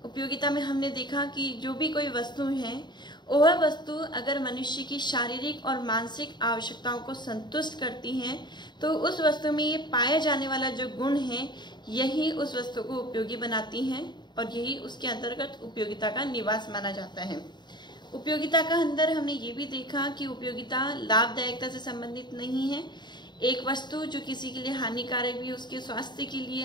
उपयोगिता में हमने देखा कि जो भी कोई वस्तु है वह वस्तु अगर मनुष्य की शारीरिक और मानसिक आवश्यकताओं को संतुष्ट करती है तो उस वस्तु में ये पाया जाने वाला जो गुण है यही उस वस्तु को उपयोगी बनाती हैं और यही उसके अंतर्गत उपयोगिता का निवास माना जाता है। उपयोगिता का अंदर हमने ये भी देखा कि उपयोगिता लाभदायकता से संबंधित नहीं है। एक वस्तु जो किसी के लिए हानिकारक भी उसके स्वास्थ्य के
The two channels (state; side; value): late; right; 0.21 ms